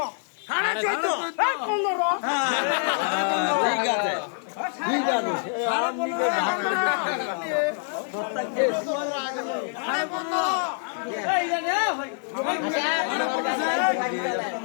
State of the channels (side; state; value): right; silent; digital silence